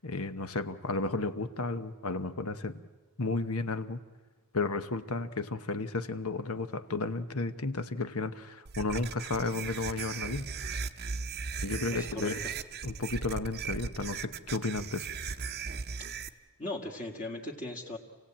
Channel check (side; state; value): both; normal; correlation 0.27